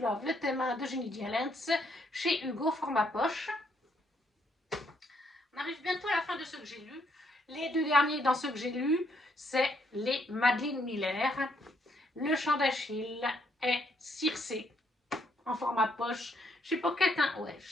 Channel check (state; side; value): normal; both; correlation 0.72